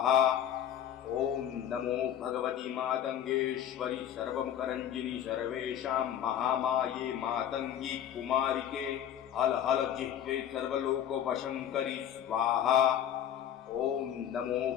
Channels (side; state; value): right; quieter; 10.1 dB